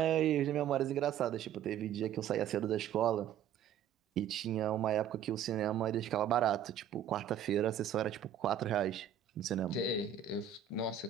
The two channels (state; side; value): quieter; left; 9.2 dB